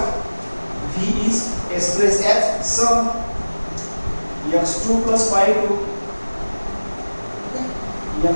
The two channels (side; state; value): both; inverted; correlation -1.00